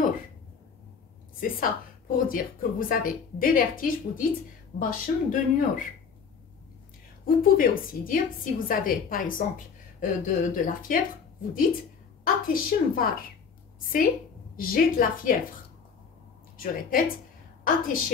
C'est ça, pour dire que vous avez des vertiges, vous dites başım dönüyor. Vous pouvez aussi dire, si vous avez par exemple de la fièvre, vous dites ateşim var. C'est j'ai de la fièvre. Je répète,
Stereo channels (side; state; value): right; quieter; 6.1 dB